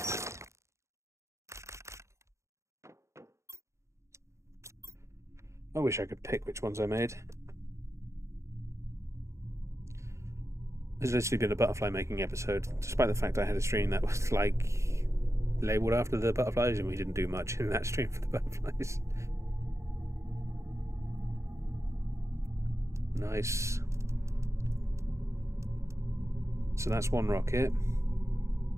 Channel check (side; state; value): left; late; 0.14 ms